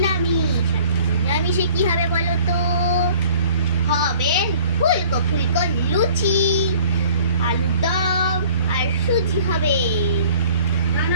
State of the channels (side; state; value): both; inverted; correlation -0.51